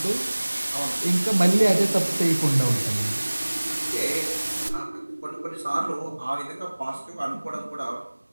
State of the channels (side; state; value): both; inverted; correlation -1.00